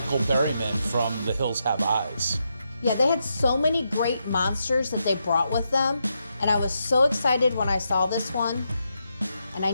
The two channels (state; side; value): inverted; both; correlation -0.83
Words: Berryman from The Hills Have Eyes. Yeah, they had so many great monsters that they brought with them, and I was so excited when I saw this one, and I